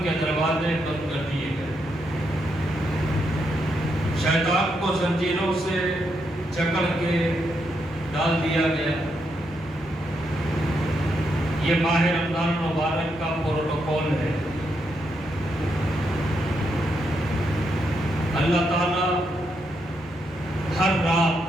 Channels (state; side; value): normal; both; correlation 0.80